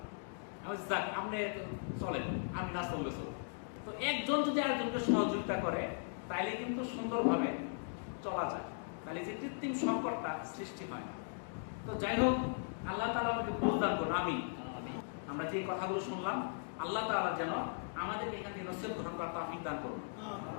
আমি যাক আপনি চলেন, আমি না চললে চল। তো একজন যদি আরেকজনকে সহযোগিতা করে, তাইলে কিন্তু সুন্দরভাবে চলা যায়, তাহলে যে কৃত্রিম সংকটটা সৃষ্টি হয় না। তো যাই হোক, আল্লাহ তাআলা আমাকে বুঝদান করুন। আমরা যে কথাগুলো শুনলাম, আল্লাহ তাআলা যেন আমাদের এখান থেকে নসিহত গ্রহণ করার তৌফিক দান করুন।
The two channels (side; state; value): right; silent; digital silence